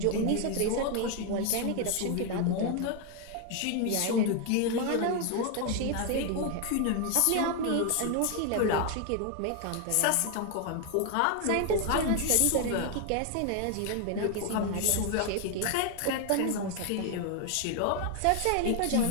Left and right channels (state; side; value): different; both; correlation 0.01